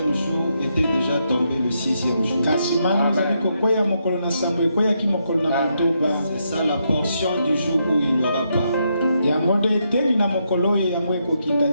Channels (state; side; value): inverted; both; correlation -0.79